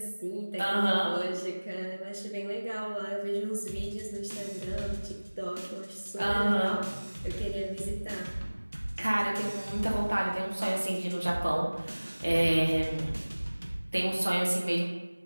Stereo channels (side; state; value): both; inverted; correlation -1.00